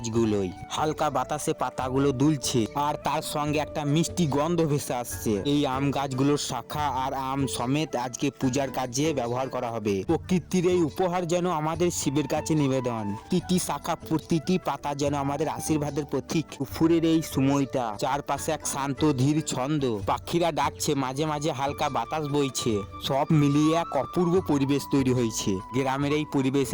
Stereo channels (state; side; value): identical; both; correlation 1.00